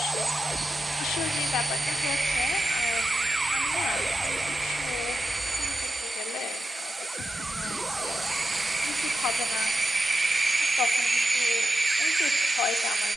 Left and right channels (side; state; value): both; normal; correlation 0.91